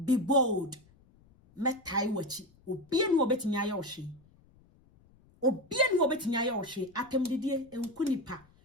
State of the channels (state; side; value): noise; left; rumble, 29 dB below the sound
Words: Be bold. Metai wachi. Obien wo betimi ayoshi. Obien wo betimi ayoshi. Atemdidie enkunipa.